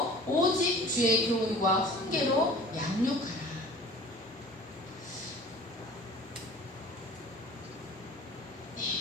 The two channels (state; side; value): normal; both; correlation 0.44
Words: 오직 주의 교훈과 훈계로 양육하라.